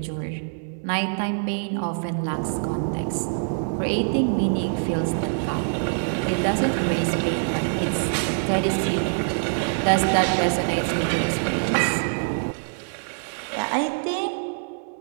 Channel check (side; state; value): left; silent; digital silence